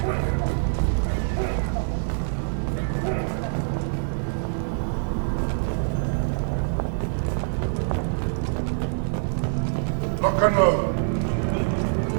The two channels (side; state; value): left; silent; digital silence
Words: Lock and load.